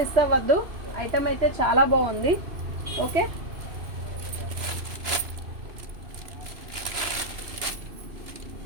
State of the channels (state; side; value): late; left; 2.9 ms